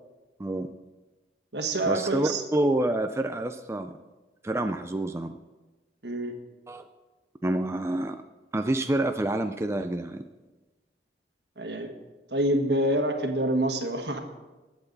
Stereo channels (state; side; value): normal; both; correlation 0.55